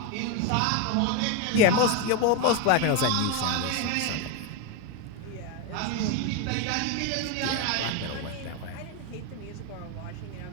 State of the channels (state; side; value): different; both; correlation 0.02